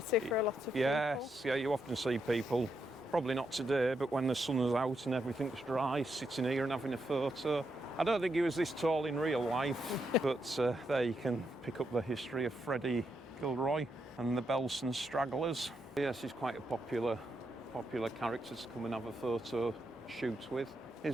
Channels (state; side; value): normal; both; correlation 0.81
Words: for a lot of people. Yes, yeah. You often see people, probably not today, but when the sun is out and everything's dry, sitting here and having a photo. I don't think he was this tall in real life, but there you can pick up the history of Freddie Gilroy and the Belson Stragglers. Yes, he's quite a popular character to come and have a photo shoot with.